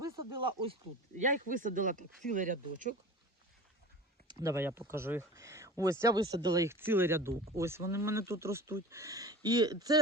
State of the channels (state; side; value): normal; both; correlation 0.35